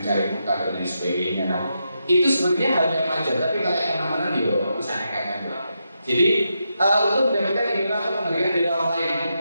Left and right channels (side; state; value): both; inverted; correlation -0.84